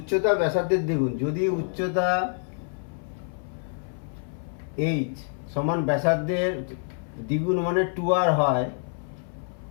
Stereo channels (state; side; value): silent; right; 60 dB below the other